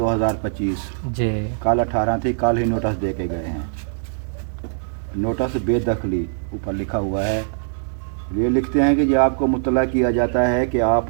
जी कल 18 थी, कल ही नोटिस दे के गए हैं। नोटिस बेदखली ऊपर लिखा हुआ है। ये लिखते हैं कि ये आपको मुतला किया जाता है कि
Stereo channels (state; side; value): silent; left; 63 dB below the other